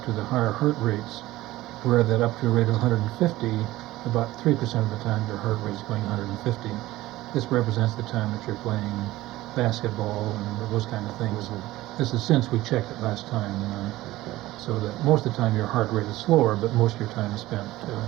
to the higher heart rates, where that up to a rate of 150, about 3% of the time your heart rate is going 150. This represents the time that you're playing basketball and those kind of things. This is since we checked it last time, so that most of the time your heart rate is slower, but most of your time is spent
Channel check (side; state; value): left; quieter; 17.1 dB